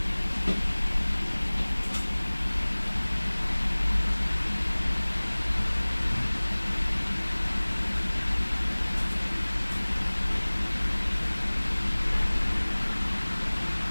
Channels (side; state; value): both; inverted; correlation -1.00